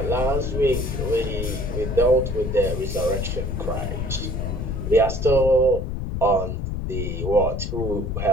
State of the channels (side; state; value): left; noise; rumble, 3 dB below the sound